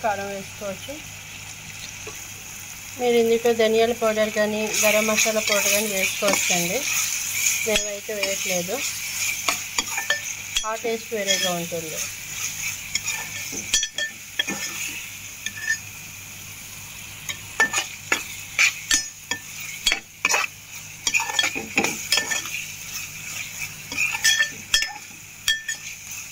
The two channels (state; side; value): identical; both; correlation 1.00